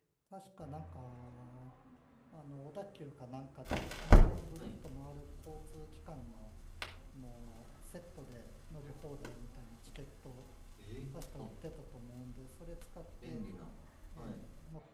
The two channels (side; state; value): both; identical; correlation 1.00